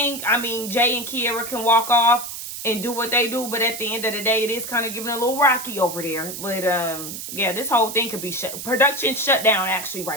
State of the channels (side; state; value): right; noise; hiss, 8 dB below the sound